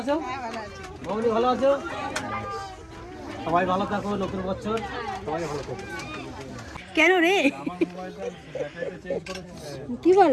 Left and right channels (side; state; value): both; identical; correlation 1.00